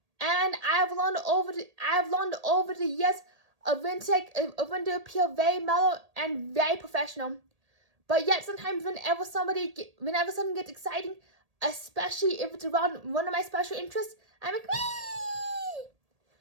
And I've learned over the years of when to appear very mellow and very professional. But yet sometimes whenever something gets exciting, especially if it's around one of my special interests, I'm like, wee!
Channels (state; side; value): late; left; 1.8 ms